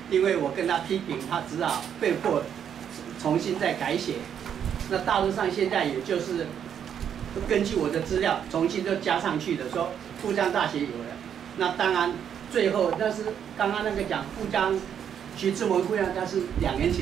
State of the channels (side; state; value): left; quieter; 8.6 dB